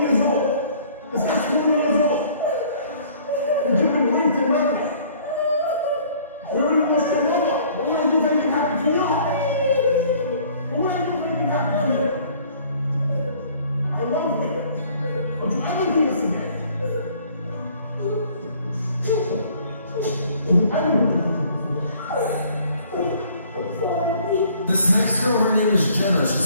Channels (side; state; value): both; inverted; correlation -0.56